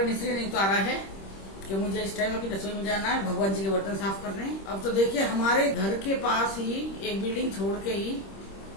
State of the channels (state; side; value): late; right; 26 ms